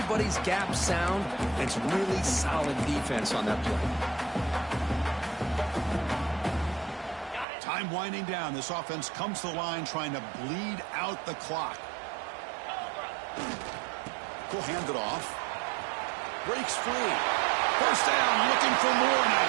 gap sound, and it's really solid defense on that play. Time winding down. This offense comes to the line trying to bleed out the clock. We'll hand it off. Breaks free. First down, looking for more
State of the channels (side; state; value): left; drops out; at 7.5 s